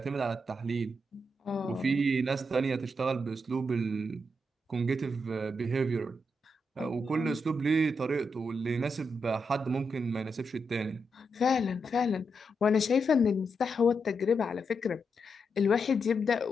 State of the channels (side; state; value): both; normal; correlation 0.83